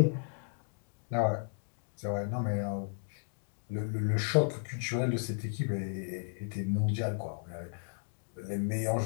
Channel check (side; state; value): right; silent; digital silence